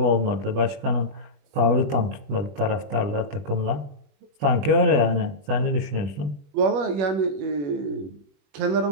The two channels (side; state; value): left; late; 21 ms